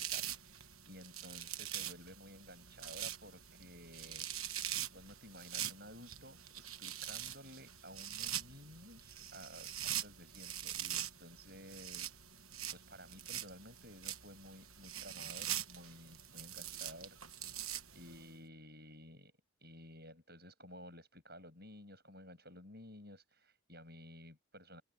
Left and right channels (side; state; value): left; quieter; 8.5 dB